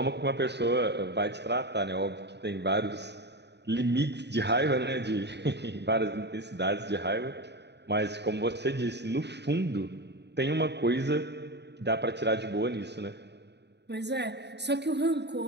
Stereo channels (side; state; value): left; late; 0.50 ms